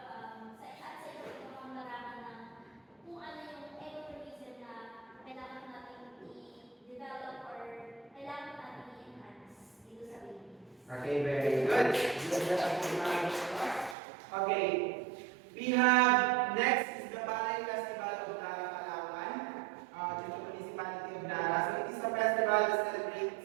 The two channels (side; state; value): left; drops out; at 14.0 s